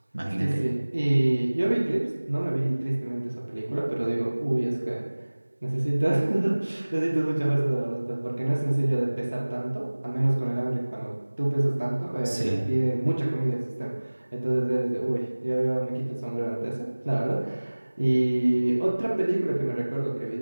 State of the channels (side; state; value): both; inverted; correlation -1.00